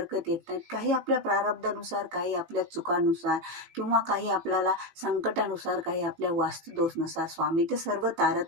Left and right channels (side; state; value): left; late; 18 ms